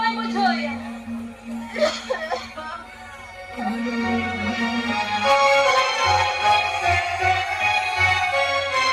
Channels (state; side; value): identical; both; correlation 1.00